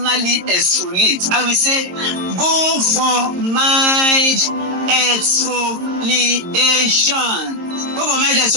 exfoliate, I will say go for mild exfoliation. Go for mild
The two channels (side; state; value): left; late; 22 ms